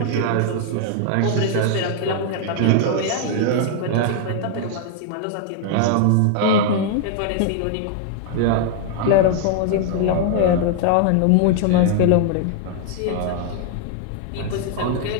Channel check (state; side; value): different; both; correlation 0.00